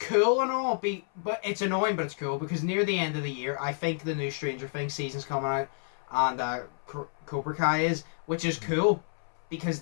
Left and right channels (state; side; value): silent; right; 58 dB below the other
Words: and all, but it's annoying, but it's cool, because near the end of the year, I think the new Stranger Things season's coming out, and Cobra Kai is, which is cool, because